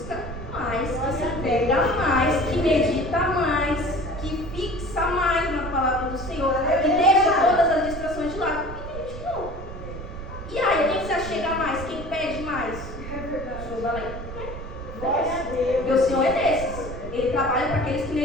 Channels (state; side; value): noise; right; rumble, 10 dB below the sound